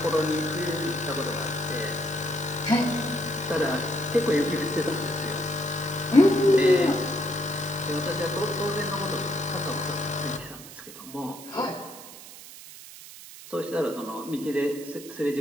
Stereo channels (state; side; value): noise; right; hiss, 16 dB below the sound